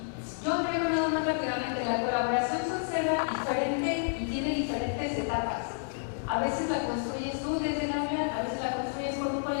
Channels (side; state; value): right; silent; digital silence